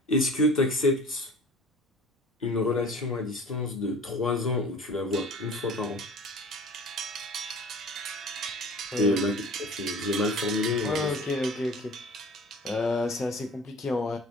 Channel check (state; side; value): normal; both; correlation 0.42